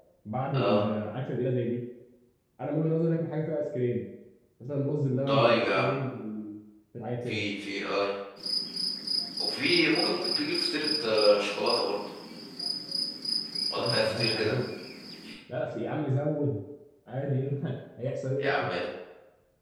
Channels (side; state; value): both; identical; correlation 1.00